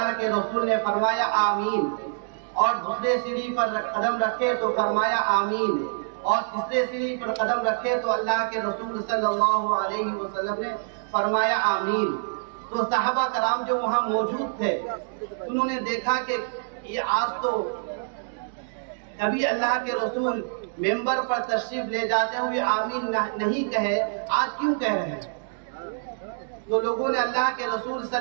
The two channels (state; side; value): silent; left; digital silence